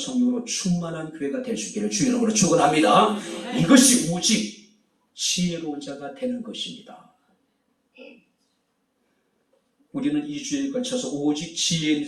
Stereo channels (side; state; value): both; identical; correlation 1.00